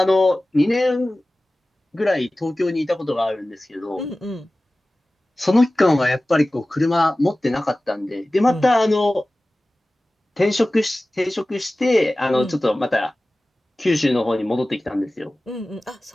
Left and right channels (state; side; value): normal; both; correlation 0.97